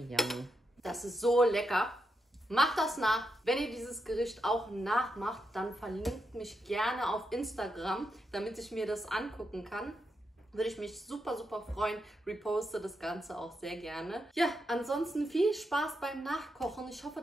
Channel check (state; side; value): normal; both; correlation 0.84